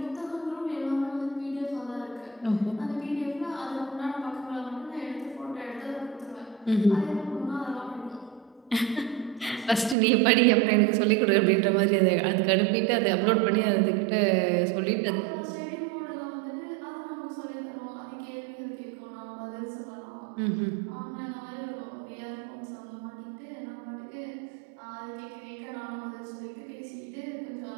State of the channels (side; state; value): left; drops out; at 10.0 s